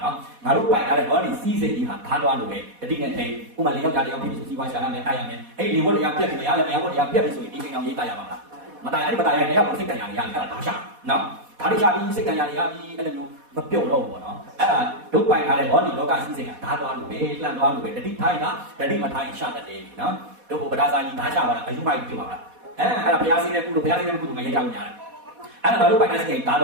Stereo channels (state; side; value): late; left; 4.1 ms